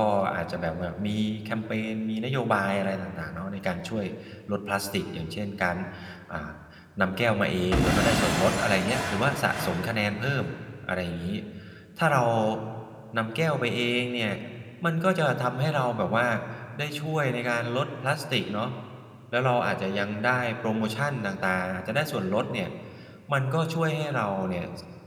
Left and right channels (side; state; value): both; identical; correlation 1.00